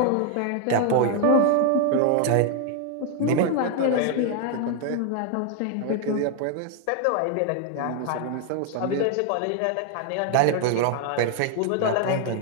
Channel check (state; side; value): different; both; correlation 0.00